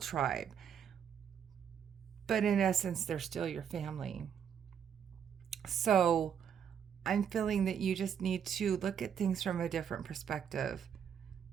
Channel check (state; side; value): quieter; left; 8.1 dB